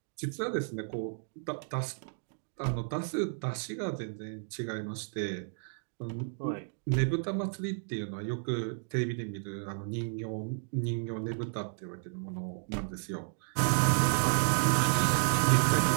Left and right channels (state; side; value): silent; left; digital silence